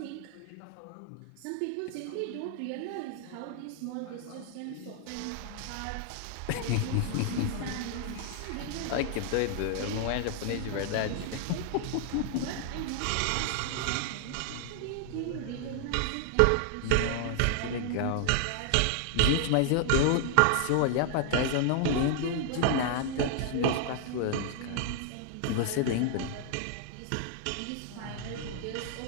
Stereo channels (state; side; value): different; both; correlation 0.00